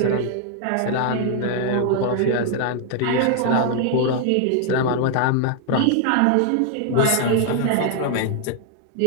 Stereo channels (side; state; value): both; different; correlation 0.00